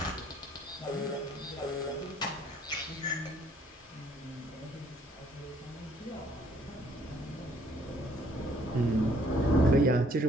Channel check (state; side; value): normal; both; correlation 0.62